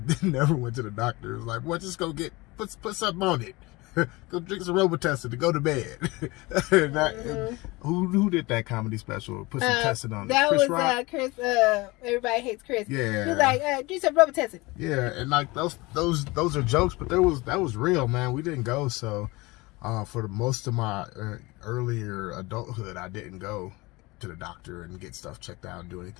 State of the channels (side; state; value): right; quieter; 23.0 dB